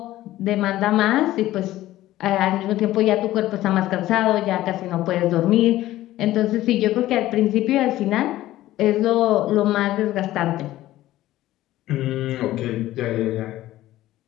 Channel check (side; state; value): right; quieter; 15.1 dB